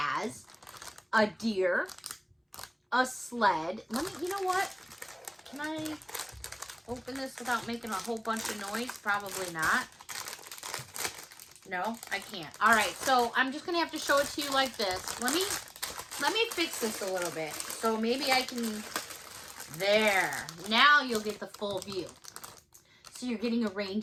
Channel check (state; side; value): identical; both; correlation 1.00